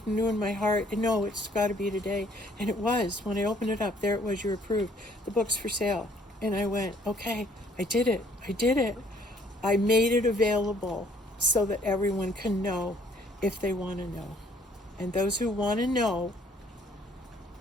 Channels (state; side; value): normal; both; correlation 0.61